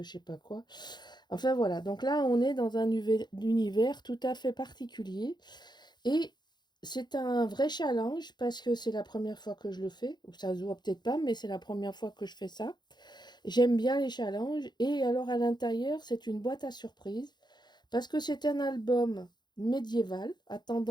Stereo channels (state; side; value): late; right; 0.21 ms